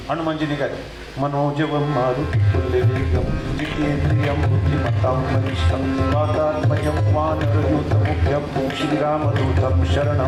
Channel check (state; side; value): identical; both; correlation 1.00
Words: हनुमानजीने काय मनोजवं मारुती पुल्लेवेगं जितेंद्रियं बुद्धिमत्तां वरिष्ठं वातात्मयं वानरयूथमुख्यं श्रीरामदूतं